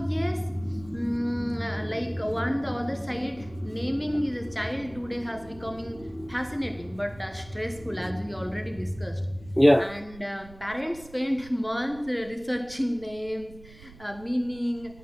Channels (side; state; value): right; noise; rumble, 19 dB below the sound